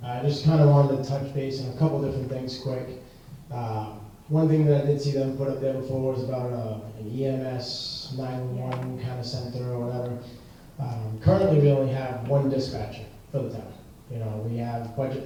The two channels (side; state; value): both; identical; correlation 1.00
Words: I just kind of wanted to touch base on a couple different things quick. One thing that I did see them put up there before was about an EMS 911 kind of center or whatever. Currently we only have one dispatcher for the town. You know, we have budget